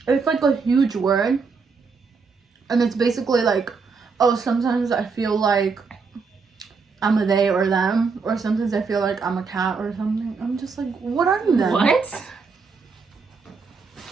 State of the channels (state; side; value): quieter; left; 5.0 dB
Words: It's like a huge word, and it's basically like, oh, sometimes I feel like I'm a they or them, or sometimes I feel like I'm a cat or something. I'm just like, what are you then? What?